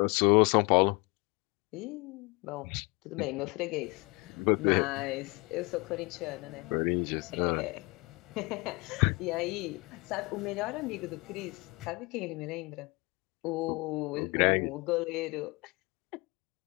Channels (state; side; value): quieter; right; 26.9 dB